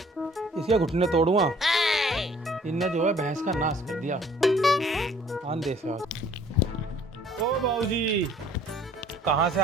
इसके घुटने तोड़ूंगा। इनने जो है भैंस का नाश कर दिया। आन दे से आज। ओ बाबूजी, कहाँ से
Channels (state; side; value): normal; both; correlation 0.56